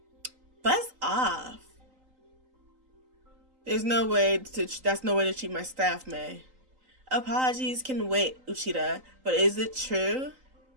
Buzz off. That's no way to treat my staff, May. Apologies can wait, Uchida, but is it true?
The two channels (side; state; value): left; late; 3.8 ms